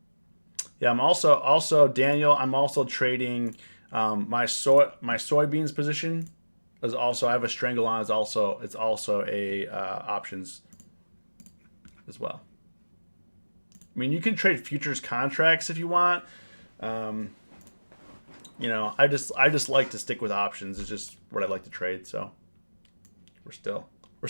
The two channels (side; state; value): both; inverted; correlation -1.00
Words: Yeah, I'm also Daniel. I'm also trading my soybeans position is also, I have a strangle on. It's also a options as well. I mean, you can trade futures contracts if you want. You know, I just like to stick with options. It's just what I like to trade. So we're still